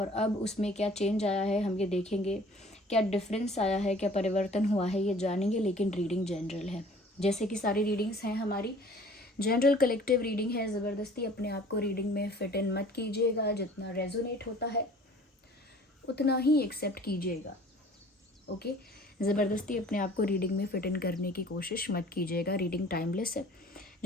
अब उसमें क्या चेंज आया है, हम ये देखेंगे। क्या डिफरेंस आया है, क्या परिवर्तन हुआ है, ये जानेंगे। लेकिन रीडिंग जनरल है, जैसे कि सारी रीडिंग्स हैं हमारी जनरल कलेक्टिव रीडिंग है। ज़बरदस्ती अपने आप को रीडिंग में फिट इन मत कीजिएगा। जितना रेजोनेट होता है उतना ही एक्सेप्ट कीजिएगा। ओके, ज़बरदस्ती अपने आप को रीडिंग में फिट इन करने की कोशिश मत कीजिएगा। रीडिंग टाइमलेस है।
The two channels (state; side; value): normal; both; correlation 0.50